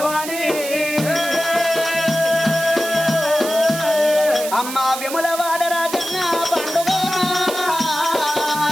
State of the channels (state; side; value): noise; right; hiss, 8 dB below the sound